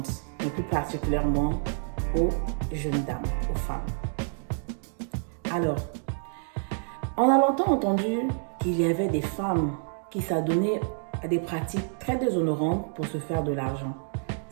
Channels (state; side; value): silent; left; 59 dB below the other